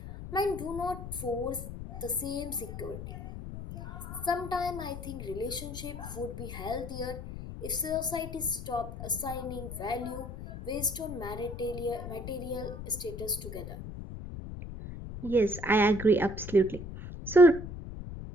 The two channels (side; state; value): left; noise; rumble, 9 dB below the sound